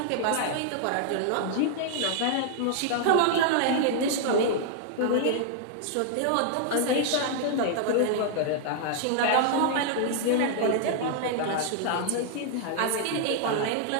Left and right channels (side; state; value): both; different; correlation -0.01